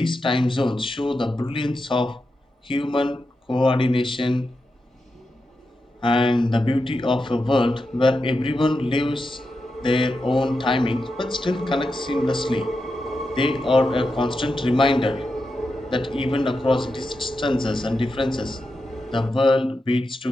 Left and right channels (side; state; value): both; normal; correlation 0.88